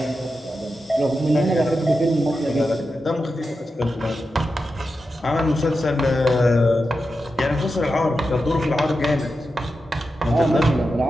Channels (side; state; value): both; normal; correlation 0.90